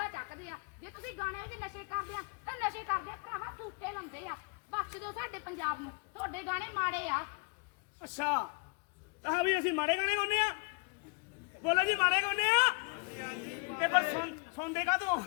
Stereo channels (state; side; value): quieter; right; 34.2 dB